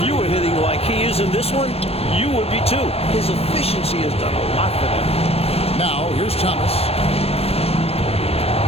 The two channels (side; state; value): right; late; 0.29 ms